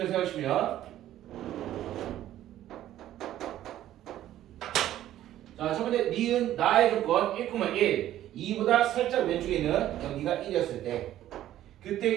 생각하시면, 자, 첫 번째 니은 나의 조건 1,1 2보다 살짝 왼쪽에 있는 여기가 1이었을 때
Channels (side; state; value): left; quieter; 12.9 dB